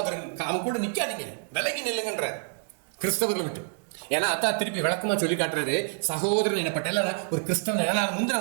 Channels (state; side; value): silent; left; digital silence